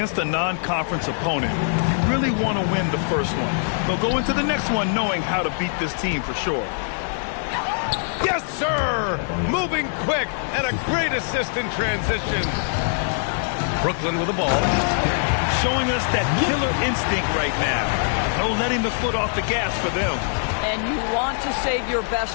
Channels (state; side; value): silent; right; 60 dB below the other